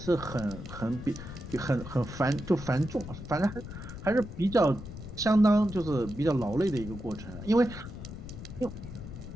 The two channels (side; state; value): left; noise; rumble, 11 dB below the sound